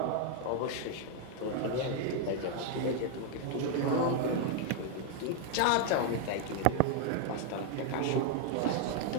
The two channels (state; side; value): different; both; correlation 0.00